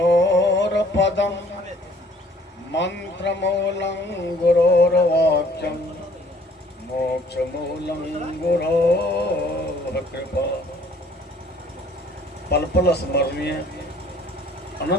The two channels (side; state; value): both; normal; correlation 0.58